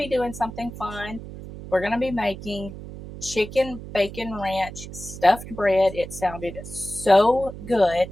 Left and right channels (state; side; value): noise; right; hum, 12 dB below the sound